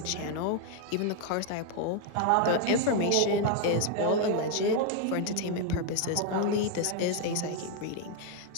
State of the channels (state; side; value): different; both; correlation 0.00